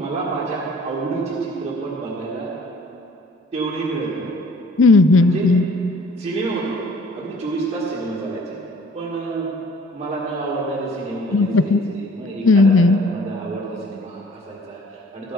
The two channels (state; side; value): normal; both; correlation 0.53